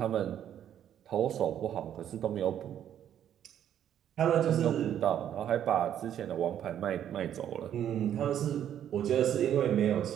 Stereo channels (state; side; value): quieter; left; 10.2 dB